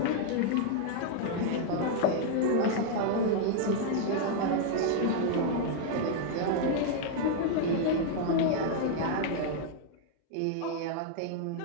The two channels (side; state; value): both; different; correlation 0.00